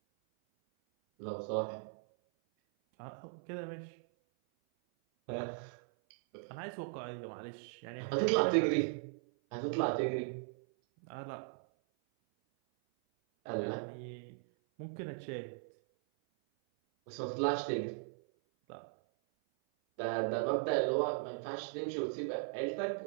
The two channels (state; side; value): silent; left; 52 dB below the other